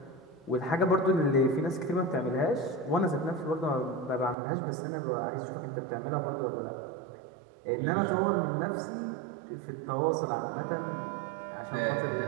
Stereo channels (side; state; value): left; drops out; at 4.4 s